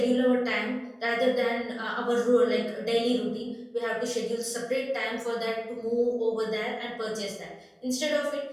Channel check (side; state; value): both; identical; correlation 1.00